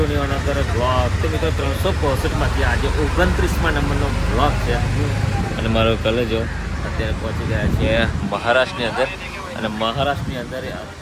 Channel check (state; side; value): identical; both; correlation 1.00